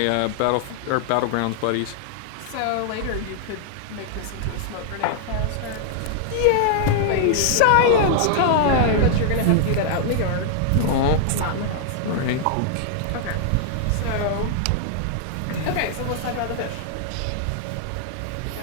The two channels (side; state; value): both; different; correlation -0.01